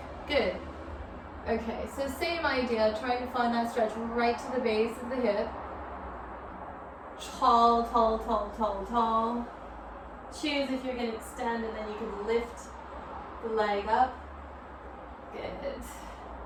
Good. Okay, so same idea, trying to find that stretch right to the base of the hip. Tall, tall, tall, tall, tall. Choose if you're going to extend, and then you can lift the leg up. Good.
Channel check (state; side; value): identical; both; correlation 1.00